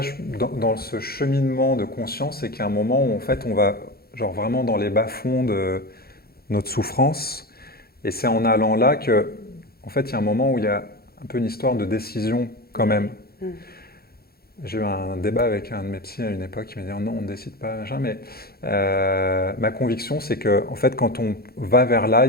dans ce cheminement de conscience, c'est qu'il y a un moment où en fait, on va genre vraiment dans les bas-fonds de notre souffrance. Et c'est en allant là que, en fait, il y a un moment où il y a un peu une histoire de décision quand même. J'ai eu un débat avec un de mes psys à une époque qui m'a dit non, on ne décide pas, machin, mais ma conviction, c'est que en fait, quand on va vers là,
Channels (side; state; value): right; late; 0.45 ms